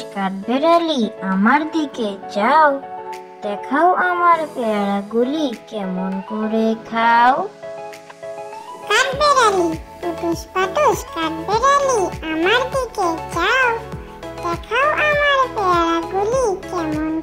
কাঠবেড়ালি আমার দিকে যাও, দেখাও আমার পেয়ারাগুলি কেমন করে খাও। কাঠবেড়ালি পুটুস পাটুস কাঠবেড়ালি আমার দিকে যাও, দেখাও আমার পেয়ারাগুলি কেমন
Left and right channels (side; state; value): both; identical; correlation 1.00